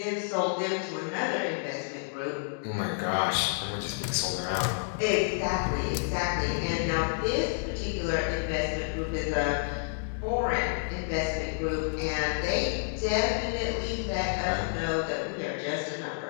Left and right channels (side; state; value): right; silent; digital silence